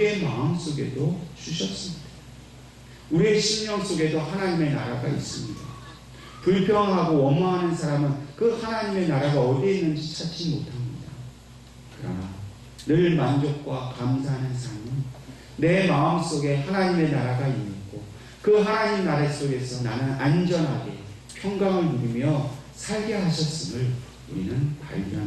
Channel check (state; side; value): identical; both; correlation 1.00